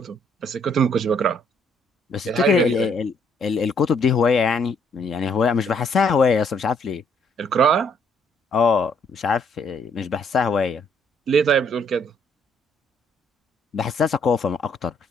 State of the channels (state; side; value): normal; both; correlation 0.67